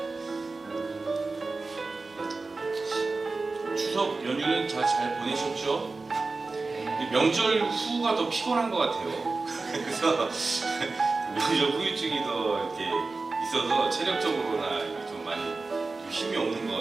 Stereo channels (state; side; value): quieter; left; 3.7 dB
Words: 추석 연휴는 잘 보내셨죠? 명절 후가 더 피곤한 것 같아요. 그래서 명절 후유증이 더 이렇게 있어서 체력적으로나 좀 많이 힘이 없는